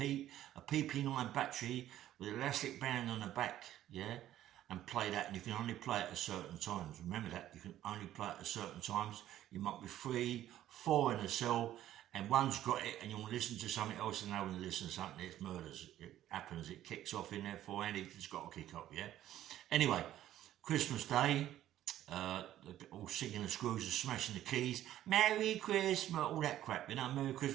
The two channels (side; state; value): left; quieter; 12.7 dB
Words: battery with an elastic band on the back, yeah, and play that. And you can only play it at certain times. Remember that, you can only play it at certain times. You might be 3, 4 in a cell, and one's got it, and you want to listen to something else, and now when you listen to something, it's murders. It happens, it kicks off in there for, and it's got to kick off, yeah? Anyway, Christmas Day, all singing the screws and smashing the keys. Merry Christmas, all that crap, you know, Merry